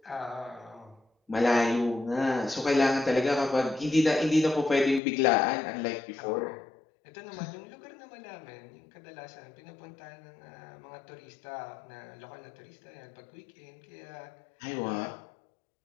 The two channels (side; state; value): right; drops out; at 5.0 s